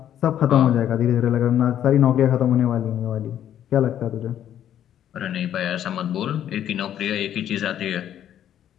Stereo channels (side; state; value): right; quieter; 10.6 dB